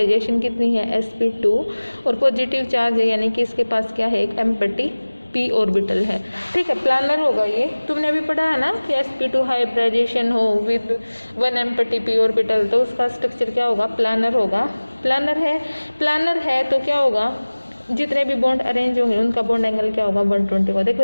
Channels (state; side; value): inverted; both; correlation -1.00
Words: कितनी है? sp2, और पॉजिटिव चार्ज है यानी कि इसके पास क्या है? एक एम्प्टी p ऑर्बिटल है। ठीक है, प्लानर होगा ये। तुमने अभी पढ़ा है ना कि sp2 हाइब्रिडाइजेशन हो विद 1 एम्प्टी p ऑर्बिटल, तो उसका स्ट्रक्चर क्या होगा? प्लानर होगा। प्लानर है तो क्या होगा? जितने भी बॉन्ड अरेंज होंगे उनका बॉन्ड एंगल क्या होगा? 120 होगा। देखो